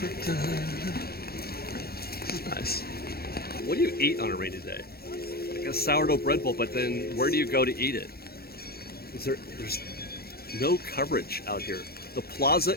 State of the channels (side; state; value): right; late; 0.45 ms